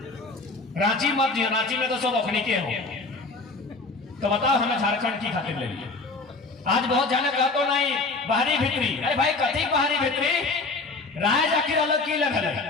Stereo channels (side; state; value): right; quieter; 3.6 dB